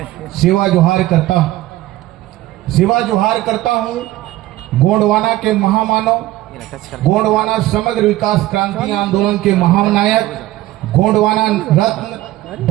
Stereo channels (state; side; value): quieter; left; 16.2 dB